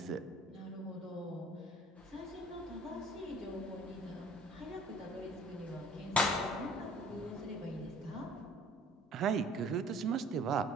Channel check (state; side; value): normal; both; correlation 0.51